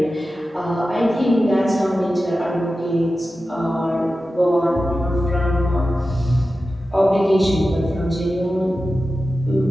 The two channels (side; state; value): both; normal; correlation 0.93